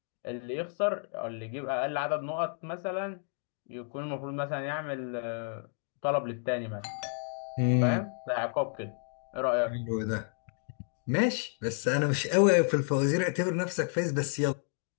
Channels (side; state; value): right; silent; 57 dB below the other